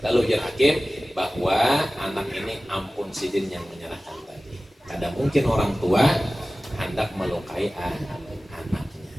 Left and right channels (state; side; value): normal; both; correlation 0.97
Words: Lalu ujar hakim bahwa anak ini ampun sidin yang menyerahkan tadi. Kada mungkin orang tua hendak melukai anaknya.